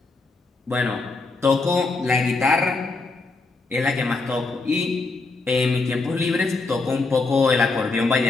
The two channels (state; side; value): quieter; right; 3.7 dB